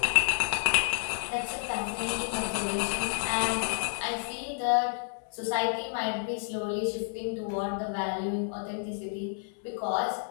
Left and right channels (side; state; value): right; silent; digital silence